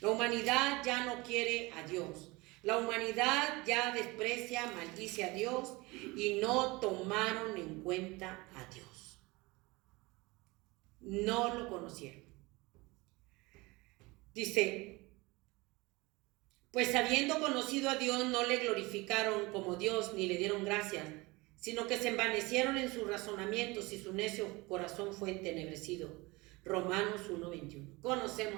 humanidad ya no quiere a Dios. La humanidad ya desprecia, maldice a Dios y no tomaron en cuenta a Dios. No lo conocieron. Dice, pues habiendo conocido a Dios no le glorificaron como Dios ni le dieron gracias, sino que se envanecieron en sus razonamientos y su necio corazón fue entenebrecido. Romanos 1:21.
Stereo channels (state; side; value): quieter; left; 23.5 dB